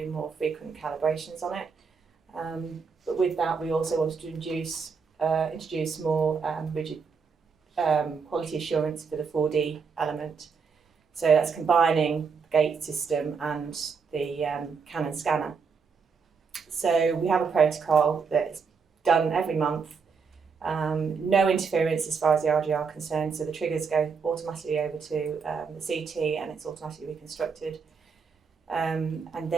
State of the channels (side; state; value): left; quieter; 5.5 dB